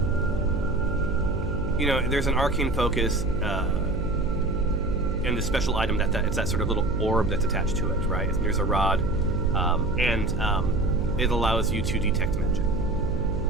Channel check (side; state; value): right; noise; hum, 5 dB below the sound